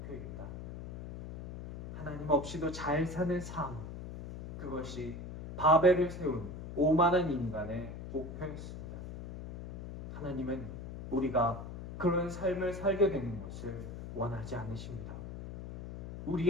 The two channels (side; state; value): left; noise; hum, 9 dB below the sound